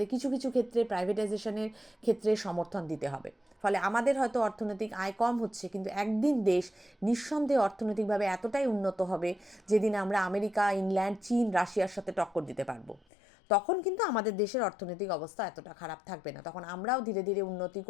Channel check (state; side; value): drops out; right; at 13.0 s